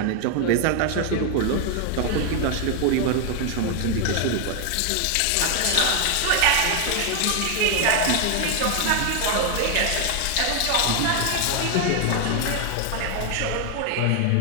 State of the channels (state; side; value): different; both; correlation 0.00